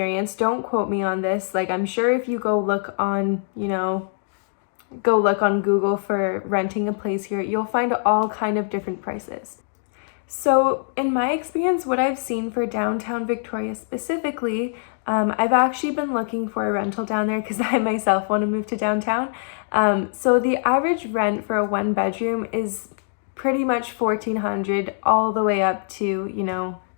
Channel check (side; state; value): right; silent; digital silence